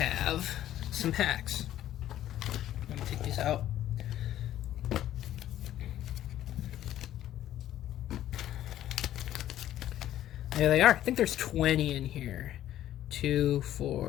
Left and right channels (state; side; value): quieter; right; 12.5 dB